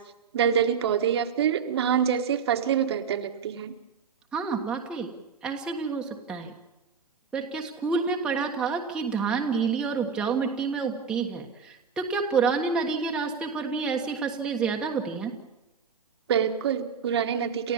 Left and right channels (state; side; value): quieter; left; 6.2 dB